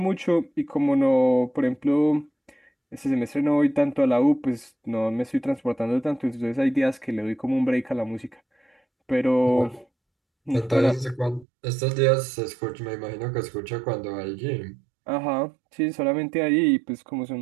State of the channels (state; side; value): drops out; left; at 11.5 s